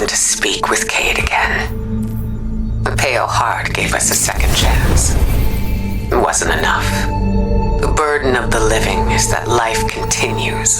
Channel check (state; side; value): identical; both; correlation 1.00